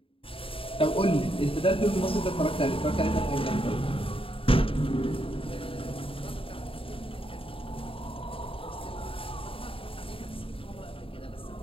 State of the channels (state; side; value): late; right; 0.26 ms